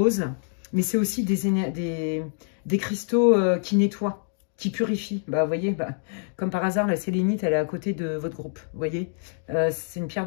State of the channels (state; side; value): silent; right; 61 dB below the other